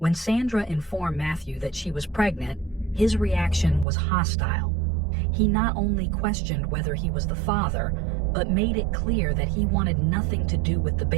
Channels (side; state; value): left; drops out; at 3.9 s